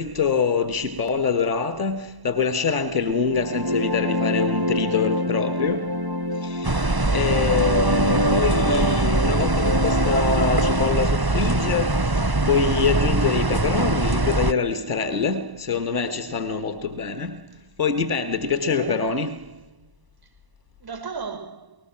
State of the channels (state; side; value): late; left; 1.0 ms